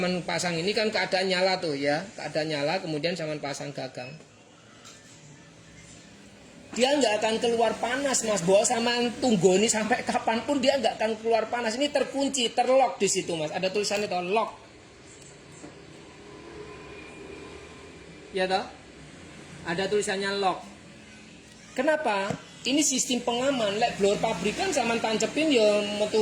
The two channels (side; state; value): both; identical; correlation 1.00